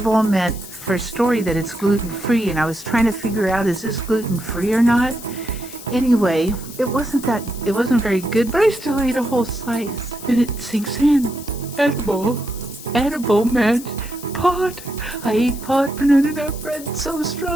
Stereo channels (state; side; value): noise; left; hiss, 15 dB below the sound